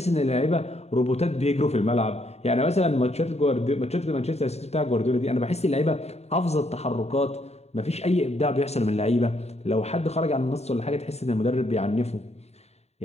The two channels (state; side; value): late; right; 0.31 ms